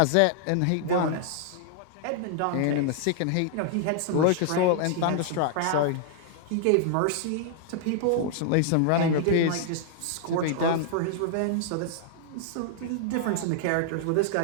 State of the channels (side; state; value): both; different; correlation -0.01